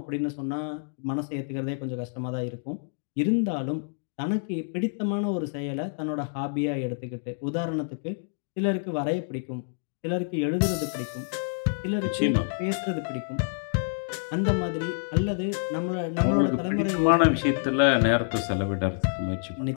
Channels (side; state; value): right; silent; digital silence